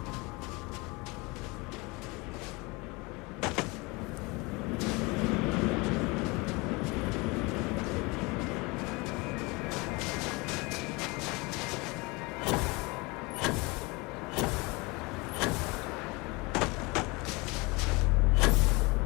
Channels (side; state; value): right; quieter; 25.9 dB